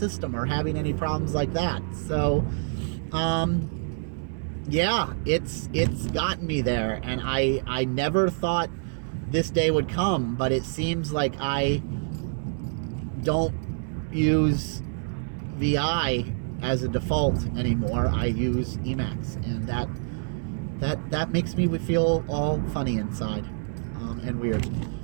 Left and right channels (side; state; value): left; silent; digital silence